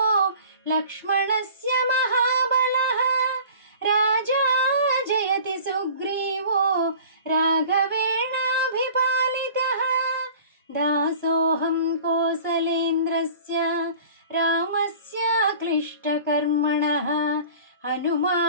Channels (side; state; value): both; inverted; correlation -0.44